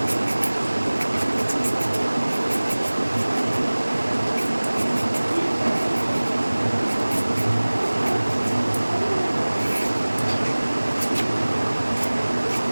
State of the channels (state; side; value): inverted; both; correlation -1.00